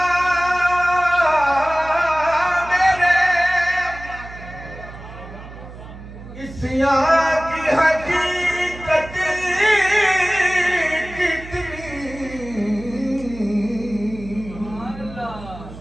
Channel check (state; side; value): noise; right; hum, 15 dB below the sound